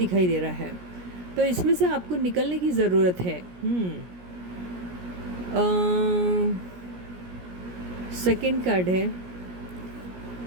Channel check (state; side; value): late; left; 17 ms